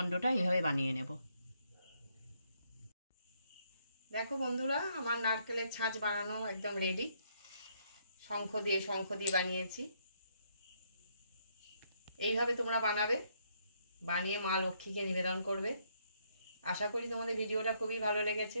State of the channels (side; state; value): both; inverted; correlation -0.73